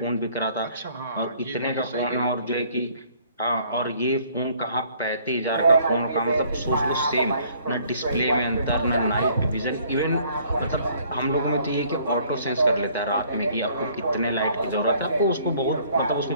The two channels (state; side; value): inverted; both; correlation -0.59